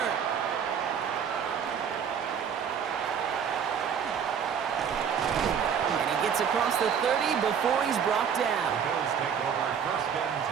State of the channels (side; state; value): left; quieter; 7.6 dB